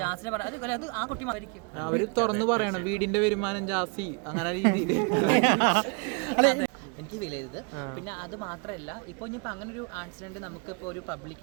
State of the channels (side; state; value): left; quieter; 34.1 dB